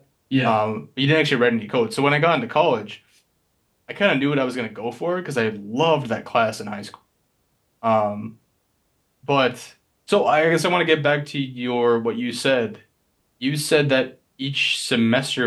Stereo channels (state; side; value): identical; both; correlation 1.00